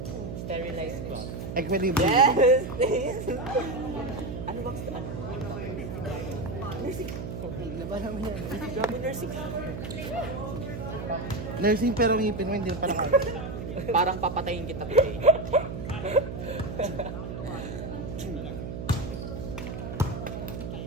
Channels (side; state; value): right; noise; hum, 7 dB below the sound